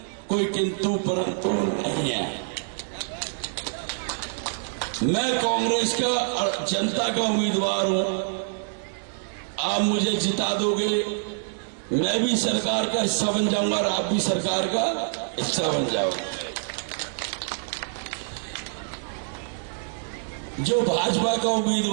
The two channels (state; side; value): silent; left; digital silence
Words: कोई किंतु परंतु नहीं है। मैं कांग्रेस का, जनता का उम्मीदवार हूं। आप मुझे जिता दोगे, मैं भी सरकार का हिस्सा बन जाऊंगा और आप भी सरकार का हिस्सा बन जाओगे। जो भाजपा का